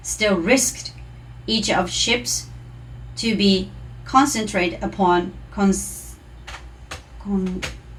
still risked each of ships to be concentrated upon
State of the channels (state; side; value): identical; both; correlation 1.00